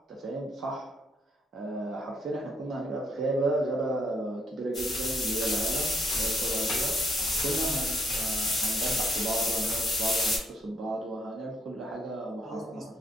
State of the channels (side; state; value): both; normal; correlation 0.72